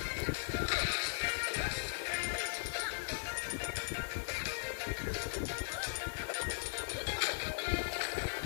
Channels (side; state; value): right; silent; digital silence